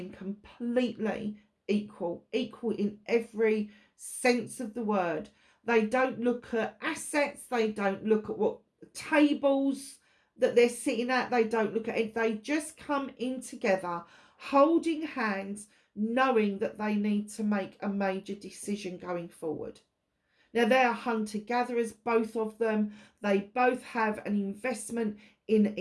completely equal in every sense of the word. They don't look at assets. They don't look at what tables that they're sitting at. They don't look at it. They just come in together, holding hands, knowing that they need to make a major decision going forward. Now, they are hunter-gatherers, both of them. They both have an investment in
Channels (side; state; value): both; identical; correlation 1.00